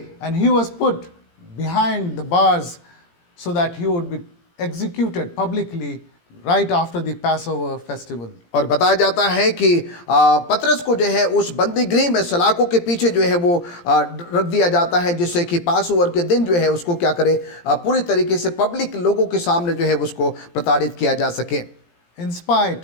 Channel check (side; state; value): right; late; 17 ms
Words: And he was put behind the bars so that he would be executed publicly right after the Passover festival. और बताया जाता है कि पतरस को जो है उस बंदी गृह में सलाखों के पीछे जो है वो रख दिया जाता है जिससे कि पासओवर के दिन जो है उसको क्या करे पूरी तरीके से पब्लिक लोगों के सामने जो है उसको प्रताड़ित किया जा सके। In spite